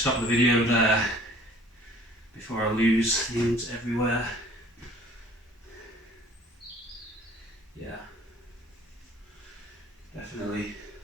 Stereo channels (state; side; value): normal; both; correlation 0.52